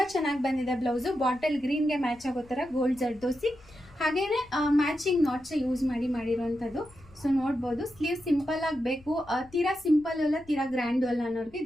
ಚೆನ್ನಾಗಿ ಬಂದಿದೆ ಬ್ಲೌಸು. ಬಾಟಲ್ ಗ್ರೀನ್ಗೆ ಮ್ಯಾಚ್ ಆಗೋ ತರ ಗೋಲ್ಡ್ ಜರ್ದೋಸಿ ಹಾಗೇನೆ ಮ್ಯಾಚಿಂಗ್ ನಾಟ್ಸ್ ಯೂಸ್ ಮಾಡಿರುವಂಥದ್ದು. ಸೊ ನೋಡ್ಬೋದು, ಸ್ಲೀವ್ ಸಿಂಪಲ್ ಆಗಿ ಬೇಕು, ತೀರಾ ಸಿಂಪಲ್ ಅಲ್ಲ ತೀರಾ ಗ್ರ್ಯಾಂಡ್ ಅಲ್ಲ ಅನ್ನೋರಿಗೆ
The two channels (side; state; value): left; noise; rumble, 25 dB below the sound